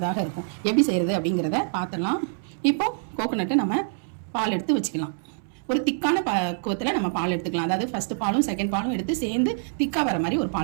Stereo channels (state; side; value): silent; left; 61 dB below the other